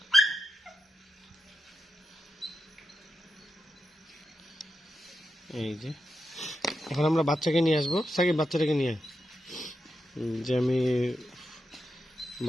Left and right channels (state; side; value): normal; both; correlation 0.87